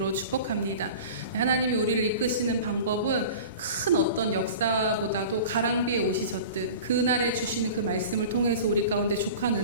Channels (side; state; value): both; inverted; correlation -0.37